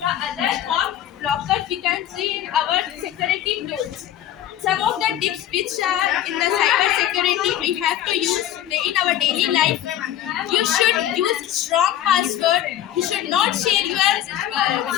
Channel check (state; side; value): quieter; right; 11.8 dB